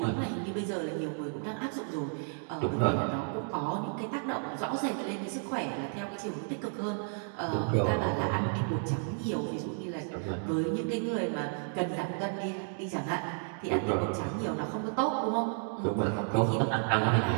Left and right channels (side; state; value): left; silent; 56 dB below the other